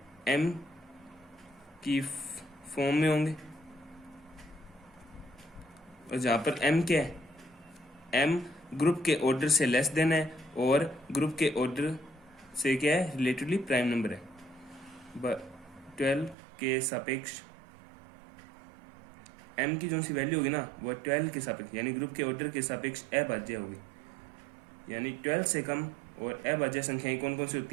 एम की फॉर्म में होंगे, और जहां पर एम क्या है, एम ग्रुप के ऑर्डर से लेस देन है और ग्रुप के ऑर्डर से क्या है, रिलेटिवली प्राइम नंबर है। 12 के सापेक्ष एम की जो सी वैल्यू होगी ना वो 12 के सापेक्ष यानी ग्रुप के ऑर्डर के सापेक्ष अभाज्य होगी, यानी 12 से कम और अभाज्य संख्याएं कौन कौन सी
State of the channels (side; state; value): left; drops out; at 16.4 s